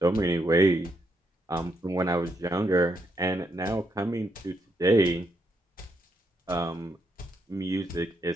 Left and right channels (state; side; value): normal; both; correlation 0.77